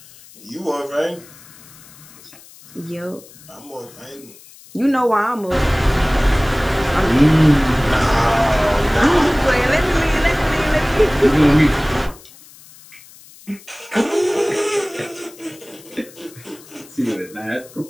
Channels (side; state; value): left; noise; hiss, 22 dB below the sound